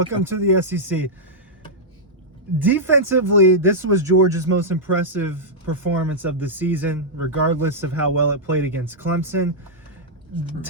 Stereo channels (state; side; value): normal; both; correlation -0.08